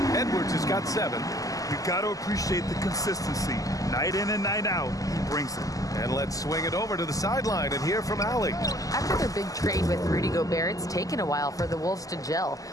Edwards has got 7. You've got to appreciate the consistency. Night in and night out, he brings it. And let's swing it over to the sideline and hear from Allie. After their big trade with Rudy Gobert, it's taken a while for the Wolves to gel.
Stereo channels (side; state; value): right; late; 0.17 ms